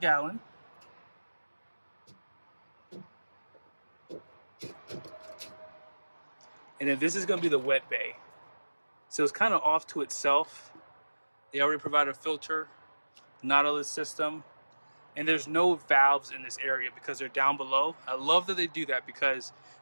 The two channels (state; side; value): inverted; both; correlation -1.00